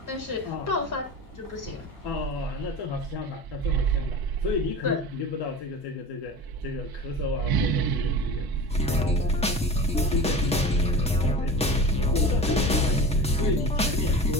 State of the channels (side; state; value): both; normal; correlation 0.33